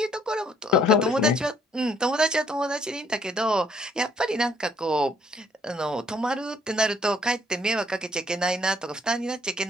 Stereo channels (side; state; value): both; normal; correlation 0.65